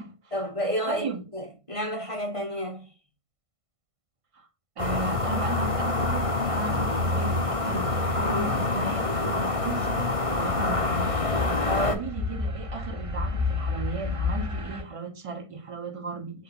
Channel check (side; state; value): left; late; 1.5 ms